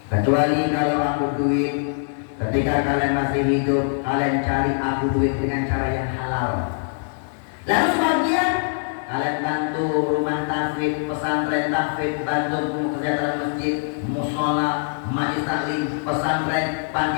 Kecuali kalau aku duit, ketika kalian masih hidup, kalian cari aku duit dengan cara yang halal. Lalu sebagian kalian bantu rumah tahfidz, pesantren tahfidz, bantu kerja dalam masjid, musola, majlis taklim, pesantren, panti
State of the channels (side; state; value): right; silent; digital silence